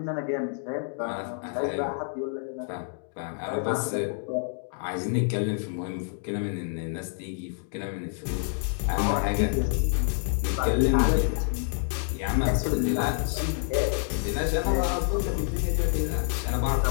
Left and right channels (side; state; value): right; silent; 59 dB below the other